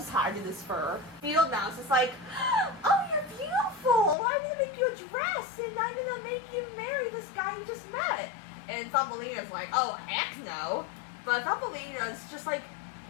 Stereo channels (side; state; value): right; drops out; at 4.2 s